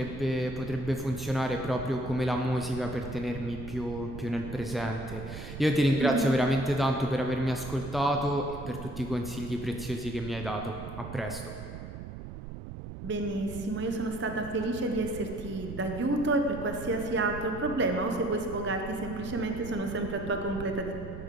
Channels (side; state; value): right; noise; rumble, 10 dB below the sound